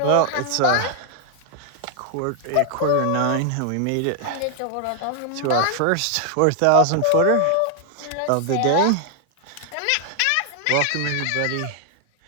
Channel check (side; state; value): both; different; correlation 0.00